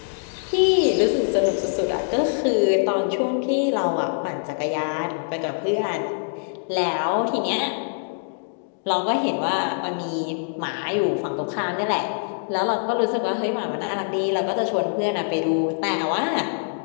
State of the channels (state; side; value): silent; right; digital silence